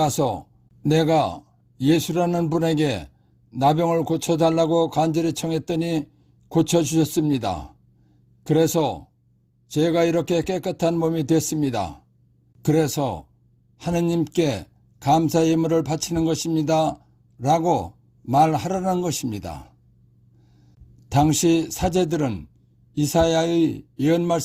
내가 예수라는 분에게 나병을 고쳐달라고 간절히 청했더니 고쳐주셨습니다. 그래서 제가 이렇게 깨끗한 몸이 됐습니다. 그래서 하느님께 감사 예물을 바치는 것입니다. 라고 말하라는 것입니다. 당시 사제들은 이사야의 예언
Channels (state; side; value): identical; both; correlation 1.00